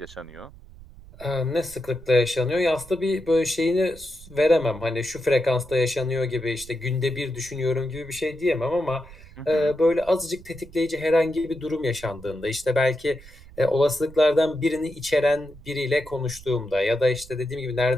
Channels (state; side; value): noise; right; rumble, 20 dB below the sound